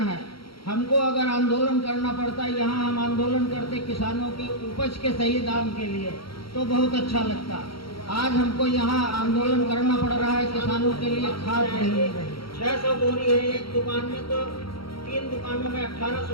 है, हमको अगर आंदोलन करना पड़ता है, यहाँ हम आंदोलन करते किसानों की उपज के सही दाम के लिए, तो बहुत अच्छा लगता। आज हमको यहाँ आंदोलन करना पड़ रहा है किसानों के लिए, खाद नहीं मिल रही। 600 बोरी है एक दुकान में, तो 3 दुकानों में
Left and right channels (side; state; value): right; late; 0.74 ms